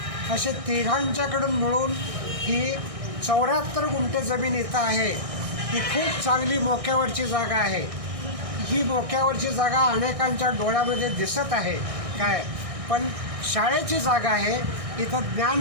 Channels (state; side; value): late; left; 1.6 ms